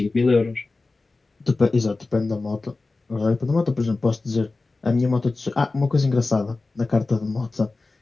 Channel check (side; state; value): right; quieter; 3.5 dB